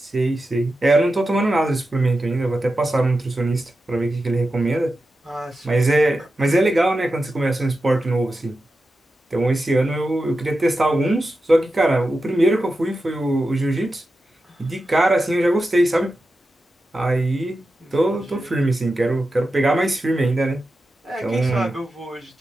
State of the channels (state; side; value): normal; both; correlation 0.91